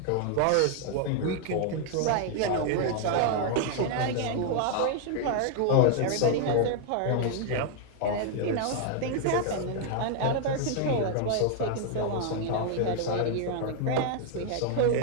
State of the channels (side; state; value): both; different; correlation 0.00